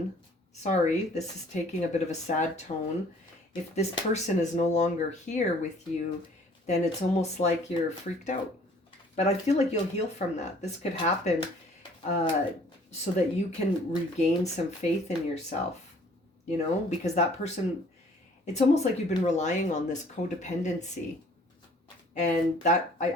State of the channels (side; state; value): both; normal; correlation 0.56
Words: sorry, this is taking a bit of a sad tone. If this person is no longer here with you, then it's almost like you're freaked out. But I feel like you'll heal from that. This could happen so that you can regain some faith in yourself, you know, because that person, it's almost like you've been relying on this codependency. And that,